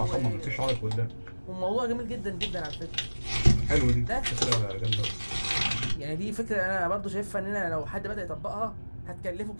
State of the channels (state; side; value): inverted; both; correlation -1.00